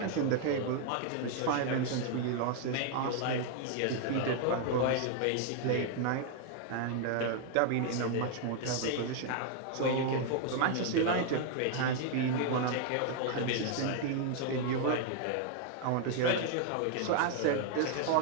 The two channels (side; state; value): both; different; correlation 0.00